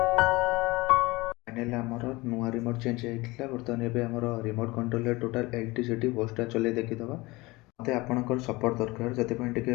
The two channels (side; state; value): right; quieter; 22.3 dB